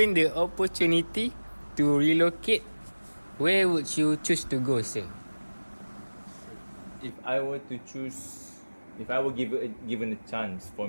the opportunity to relocate, where would you choose to go, sir? If I were to choose, if I were given a chance for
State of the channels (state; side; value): inverted; both; correlation -1.00